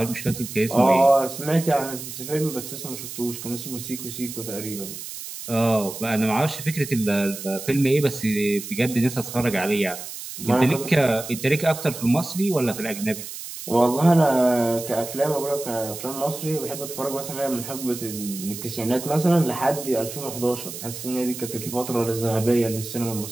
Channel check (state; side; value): noise; right; hiss, 10 dB below the sound